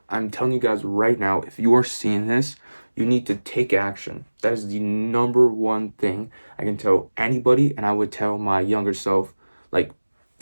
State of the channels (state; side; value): inverted; both; correlation -1.00